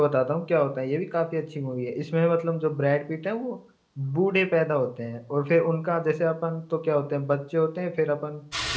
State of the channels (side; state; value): both; identical; correlation 1.00